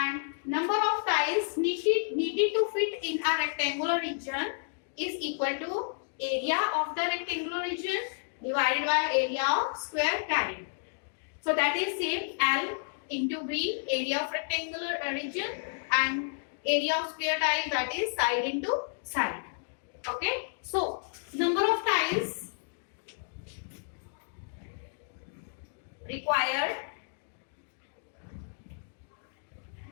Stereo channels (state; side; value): silent; right; digital silence